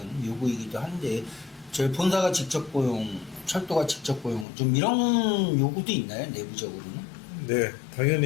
요구이기도 한데 저희 본사가 직접 고용, 철도가 직접 고용 좀 이런 요구도 있나요 내부적으로는? 네,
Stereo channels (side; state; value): right; drops out; at 4.5 s